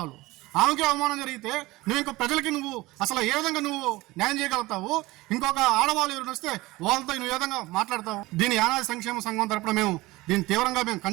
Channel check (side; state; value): left; quieter; 20.2 dB